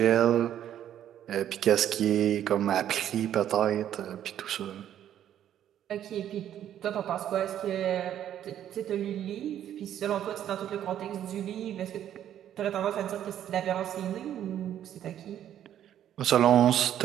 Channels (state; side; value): quieter; left; 10.8 dB